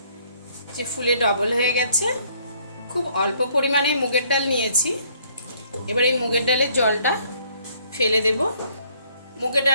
যে ফুলে ডবল হয়ে গেছে। খুব অল্প পরিমাণে মুগের ডাল নিয়েছি। এবার এই মুগের ডালের জলটা ফেলে দেব। মুগের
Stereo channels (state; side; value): inverted; both; correlation -0.64